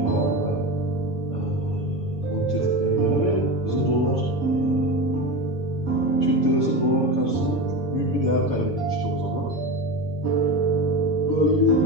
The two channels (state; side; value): late; right; 7.0 ms